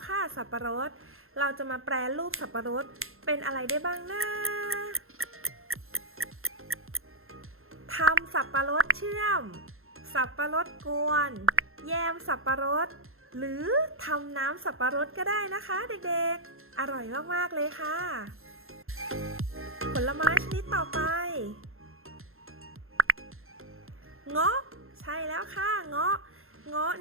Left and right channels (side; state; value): left; late; 0.61 ms